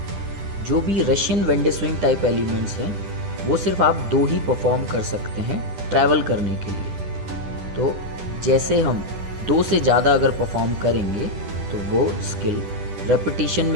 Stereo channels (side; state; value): left; late; 10 ms